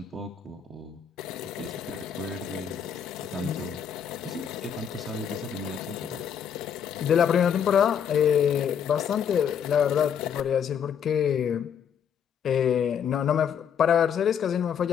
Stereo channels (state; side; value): quieter; right; 7.9 dB